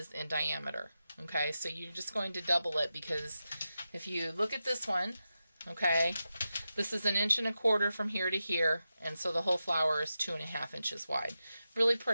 in diameter. Okay, so you're just going to double it, because if you look at this one, okay, this is 1.25 inches from here to here, and so the whole flower is 2.5 inches wide. Really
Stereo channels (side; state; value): both; inverted; correlation -0.91